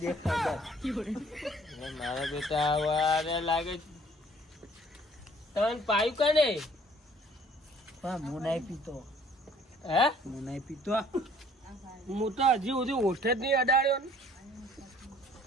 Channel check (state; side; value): normal; both; correlation 0.57